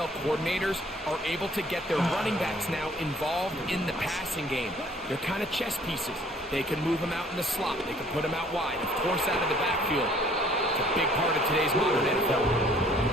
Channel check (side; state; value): both; normal; correlation 0.57